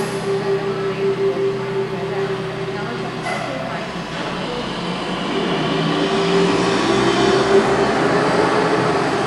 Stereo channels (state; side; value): identical; both; correlation 1.00